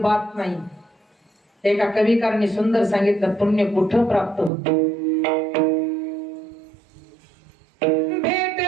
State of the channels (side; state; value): left; drops out; at 4.5 s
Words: नाही. एका कविकारांनी सुंदर सांगितलं, पुण्य कुठं प्राप्त होत.